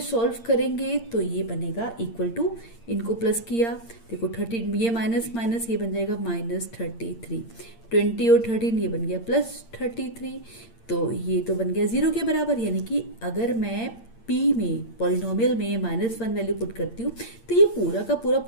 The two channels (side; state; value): right; late; 8.7 ms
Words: सॉल्व करेंगे तो ये बनेगा इक्वल टू, इनको प्लस किया, देखो 13, ये माइनस माइनस, ये बन जाएगा -33, 20 और 13 ये बन गया +33, तो ये तो बन गया 0 के बराबर। यानी कि अगर मैं p में पॉलिनोमियल में -1 वैल्यू पुट करती हूँ तो ये पूरा का पूरा